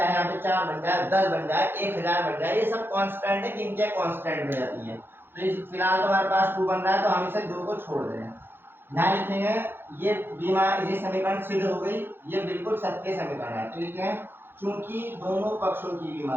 यहाँ पे 4 बन जाए, 10 बन जाए, 1000 बन जाए, ये सब कांस्टेंट है, गिनतियां कांस्टेंट हो जाती है। तो फिलहाल तो हमारे पास 2 बन रहा है, तो हम इसे 2 को छोड़ दें। यहाँ लिखेंगे ये बीमा, ये समीकरण सिद्ध हो गई, ये बिल्कुल सत्य समीकरण है, तो लिखेंगे चूंकि दोनों पक्षों की बीमा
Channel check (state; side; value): late; left; 0.10 ms